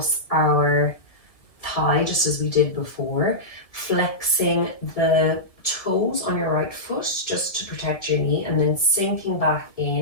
our thigh, just as we did before, flexing the toes on your right foot just to protect your knee, and then sinking back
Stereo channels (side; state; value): right; late; 1.7 ms